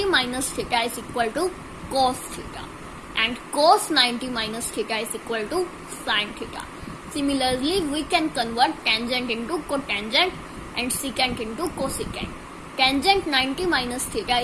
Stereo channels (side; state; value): both; identical; correlation 1.00